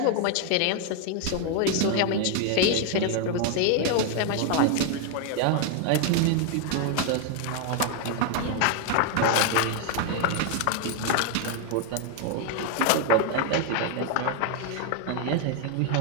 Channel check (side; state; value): both; different; correlation 0.00